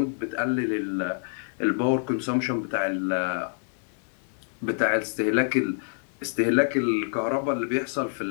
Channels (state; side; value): silent; right; digital silence